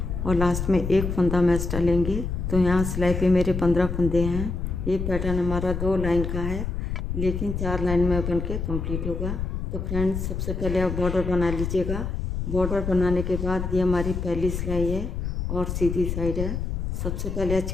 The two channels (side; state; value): left; noise; rumble, 3 dB below the sound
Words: और लास्ट में 1 फंदा हम एक्स्ट्रा लेंगे। तो यहाँ सिलाई पे मेरे 15 फंदे हैं। ये पैटर्न हमारा 2 लाइन का है, लेकिन 4 लाइन में बन के कम्प्लीट होगा। तो फ्रेंड्स, सबसे पहले आप बॉर्डर बना लीजिएगा। बॉर्डर बनाने के बाद ये हमारी पहली सिलाई है और सीधी साइड है। सबसे पहले एच